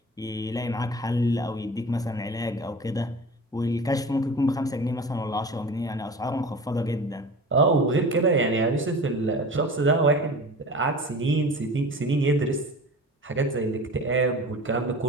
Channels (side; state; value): both; normal; correlation 0.37